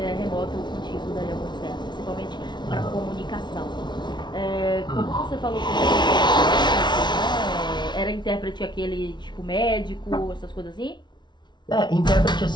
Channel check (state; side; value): late; right; 0.21 ms